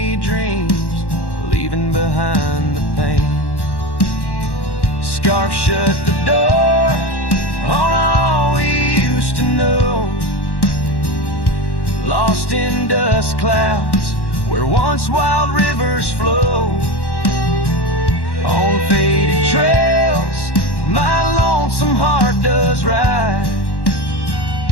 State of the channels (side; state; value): right; late; 1.1 ms